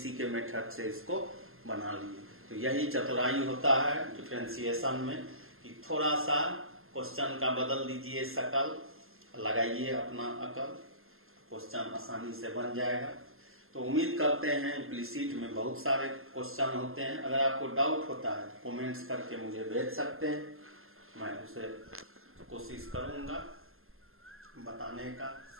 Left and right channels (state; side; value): late; left; 0.61 ms